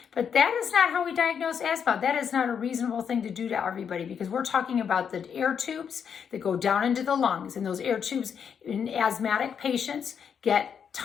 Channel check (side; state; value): right; quieter; 7.4 dB